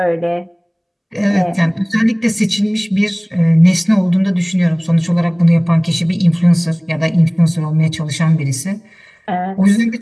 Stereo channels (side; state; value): both; identical; correlation 1.00